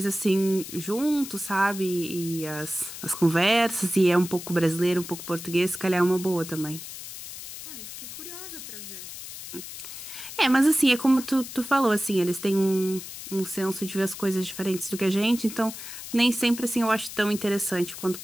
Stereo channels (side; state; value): left; noise; hiss, 11 dB below the sound